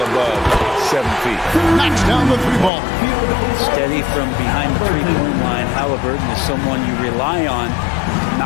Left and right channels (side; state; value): right; drops out; at 2.7 s